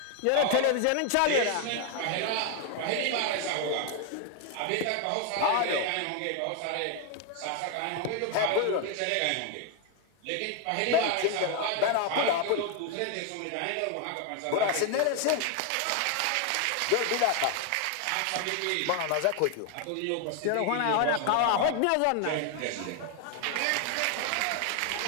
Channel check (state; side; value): different; both; correlation 0.01